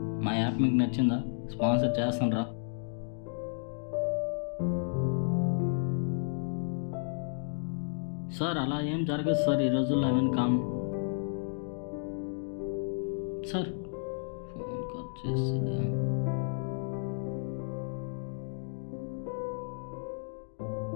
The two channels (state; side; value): silent; right; digital silence